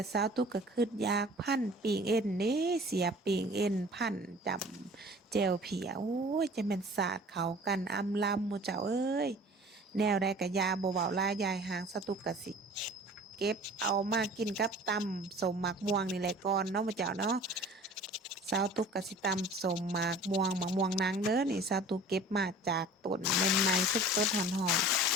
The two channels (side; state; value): both; normal; correlation 0.45